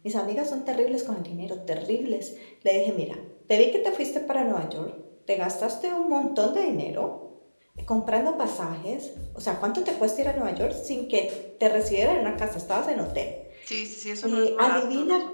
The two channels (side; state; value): both; inverted; correlation -1.00